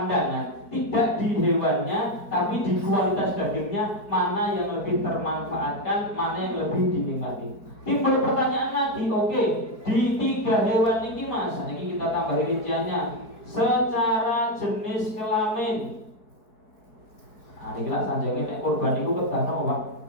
tidak di hewannya tapi di kualitas dagingnya, mana yang lebih termanfaatkan, mana yang lebih dinikmati. Timbul pertanyaan lagi, oke, di tiga hewan ini Mas, ini kita tambah rinciannya secara jenis kelamin. Nah, ini lah sanjangnya nek korban itu kedana apa?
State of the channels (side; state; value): right; late; 4.6 ms